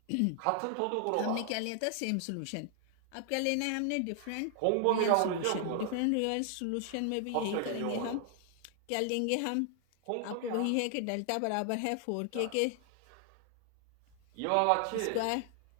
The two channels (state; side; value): different; both; correlation 0.00